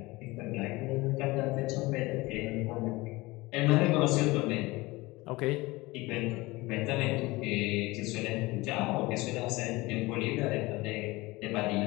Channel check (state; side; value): quieter; right; 21.6 dB